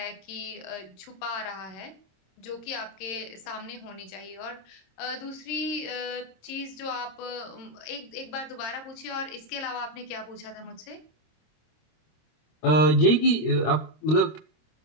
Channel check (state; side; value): late; right; 26 ms